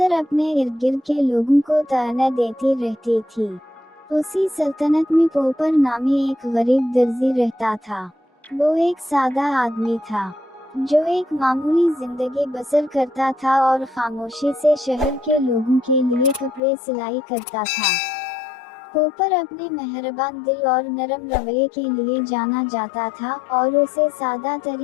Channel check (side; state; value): right; drops out; at 16.6 s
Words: अपने इर्द गिर्द के लोगों को ताना देती रहती थी। उसी सल्तनत में पोपर नामी एक गरीब दर्जी रहता था। वो एक सादा आदमी था जो एक मामूली जिंदगी बसर करता था और खामोशी से शहर के लोगों के लिए कपड़े सिलाई करता था। पोपर अपने मेहरबान दिल और नरम रवैये के लिए जाना जाता था और उसे सादा